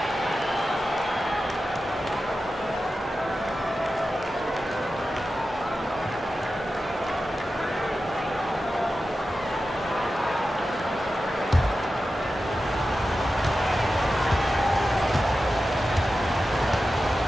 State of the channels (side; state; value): both; normal; correlation 0.93